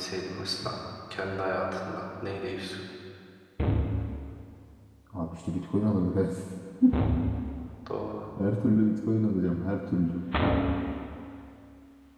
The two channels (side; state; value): both; identical; correlation 1.00